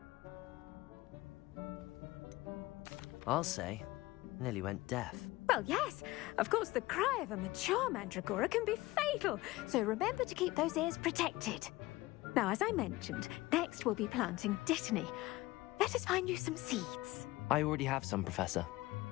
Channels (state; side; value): quieter; right; 19.4 dB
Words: I'll say. Nearly went deaf. Well, yes. Of course, the cry of a mature mandragora can be fatal, so remember to keep those ears protected. Now, as I mentioned, next we'll be planting Dittany. Let us find you some seeds. I already have some, Professor.